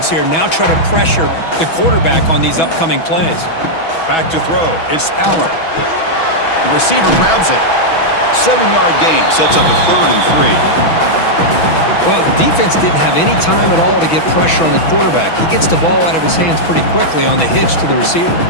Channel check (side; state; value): right; late; 6.1 ms